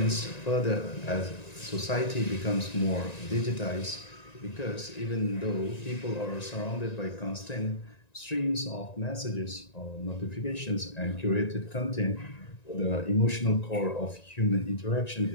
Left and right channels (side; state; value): right; late; 1.9 ms